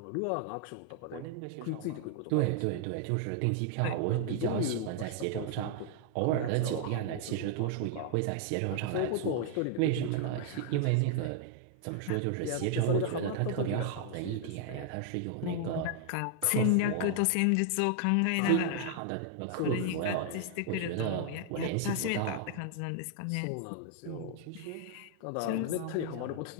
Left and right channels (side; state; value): both; different; correlation 0.00